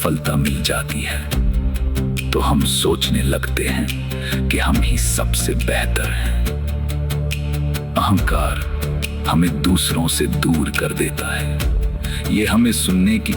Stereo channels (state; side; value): identical; both; correlation 1.00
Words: मिल जाती है, तो हम सोचने लगते हैं कि हम ही सबसे बेहतर हैं। अहंकार हमें दूसरों से दूर कर देता है। ये हमें सुनने की